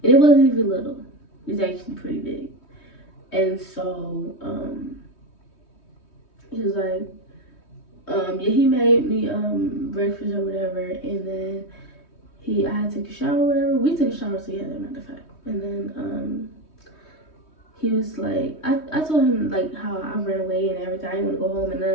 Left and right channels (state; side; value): late; right; 3.2 ms